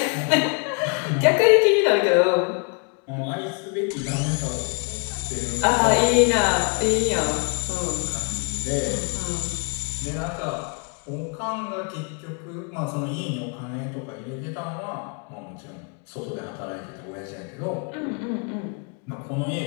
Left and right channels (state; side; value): quieter; right; 36.5 dB